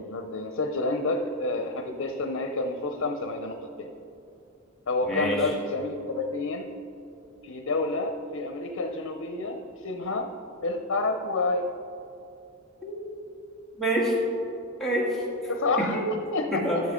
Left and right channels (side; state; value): both; normal; correlation 0.00